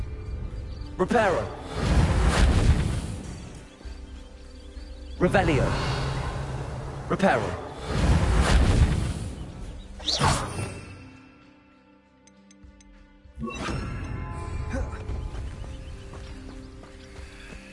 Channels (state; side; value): identical; both; correlation 1.00